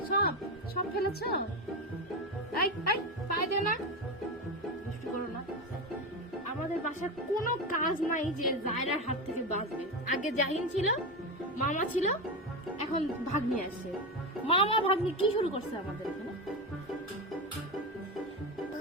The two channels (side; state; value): both; normal; correlation 0.17